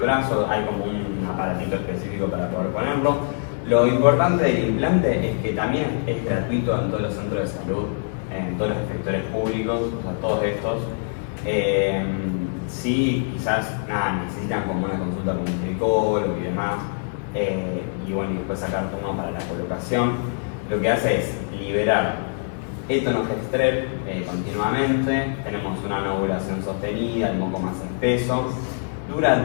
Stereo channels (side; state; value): right; silent; 63 dB below the other